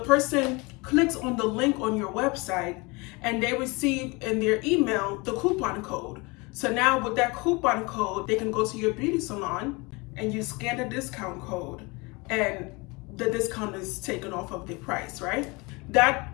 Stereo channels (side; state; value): right; quieter; 26.6 dB